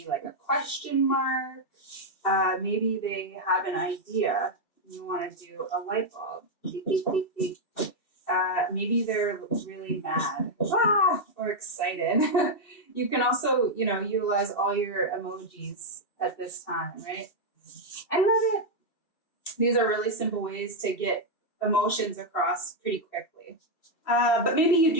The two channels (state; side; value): late; right; 2.6 ms